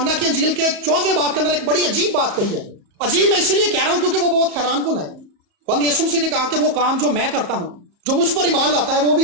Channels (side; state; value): left; late; 34 ms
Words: کی انجیل کے 14 باب کے اندر ایک بڑی عجیب بات کہی ہے. عجیب میں اسی لیے کہہ رہا ہوں کیونکہ وہ بہت حیران کن ہے. بند یسوع مسیح نے کہا کہ وہ کام جو میں کرتا ہوں، جو مجھ پر ایمان لاتا ہے